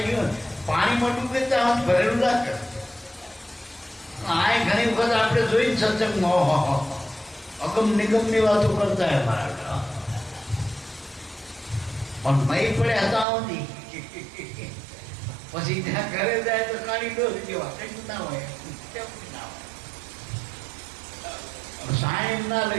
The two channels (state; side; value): drops out; left; at 13.2 s